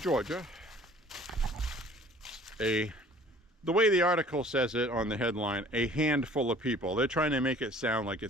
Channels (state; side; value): normal; both; correlation 0.51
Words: The way the article says it on the headline, a handful of people. They're trying to make it sound like